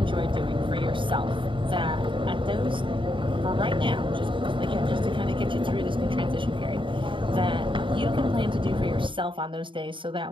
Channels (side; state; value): left; late; 0.24 ms